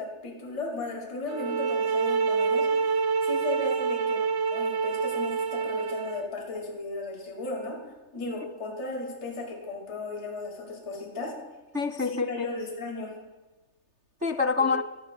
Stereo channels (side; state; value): left; late; 3.3 ms